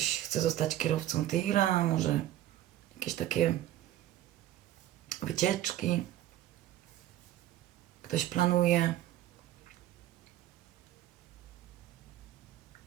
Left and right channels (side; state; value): left; quieter; 13.5 dB